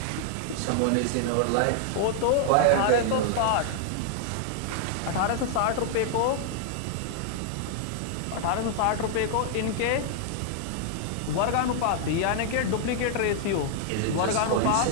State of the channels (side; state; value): both; different; correlation -0.01